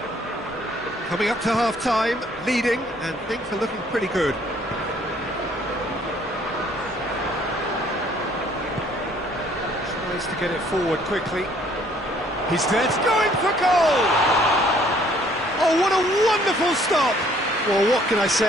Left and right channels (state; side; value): normal; both; correlation 0.61